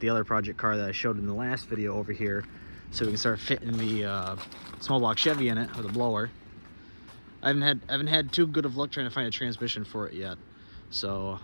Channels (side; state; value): both; inverted; correlation -1.00